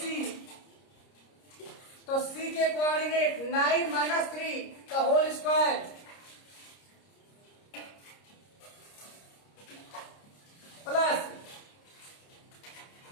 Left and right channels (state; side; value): late; right; 30 ms